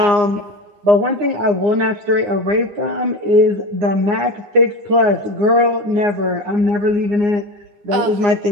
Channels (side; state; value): left; late; 10 ms